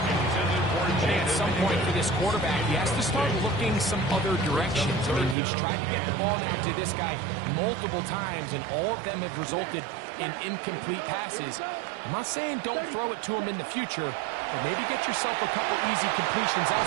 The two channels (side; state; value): left; drops out; at 5.4 s